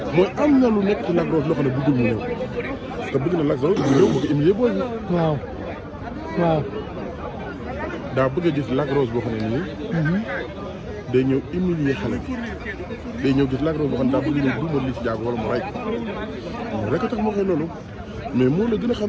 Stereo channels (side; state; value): both; identical; correlation 1.00